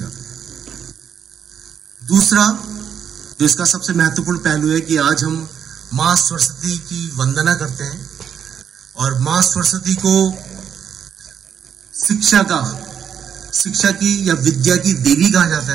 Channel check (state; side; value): quieter; left; 8.1 dB